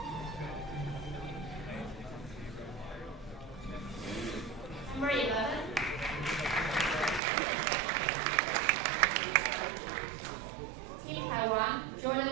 Number 11. Team Taiwan,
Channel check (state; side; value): drops out; left; at 7.2 s